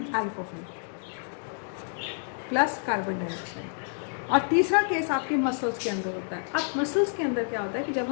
प्लस कार्बन डाइऑक्साइड। और तीसरा केस आपके मसल्स के अंदर होता है। अब मसल्स के अंदर क्या होता है कि जब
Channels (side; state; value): right; silent; digital silence